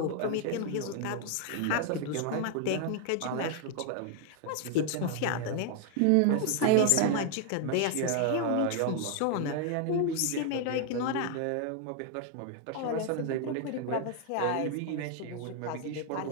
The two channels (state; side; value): different; both; correlation 0.00